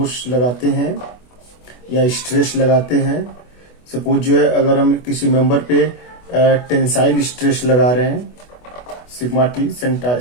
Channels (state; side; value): late; right; 24 ms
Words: लगाते हैं या स्ट्रेस लगाते हैं, सपोज जो है अगर हम किसी मेंबर पे टेंसाइल स्ट्रेस लगा रहे हैं, सिग्मा टी